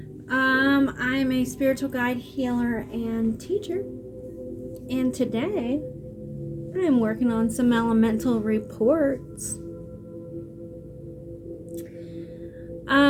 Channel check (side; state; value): both; identical; correlation 1.00